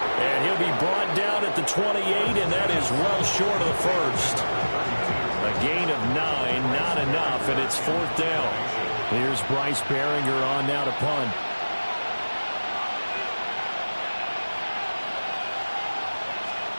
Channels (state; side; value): inverted; both; correlation -1.00